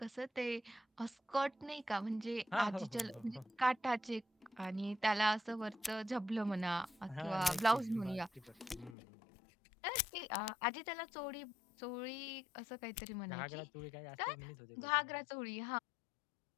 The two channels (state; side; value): drops out; right; at 9.0 s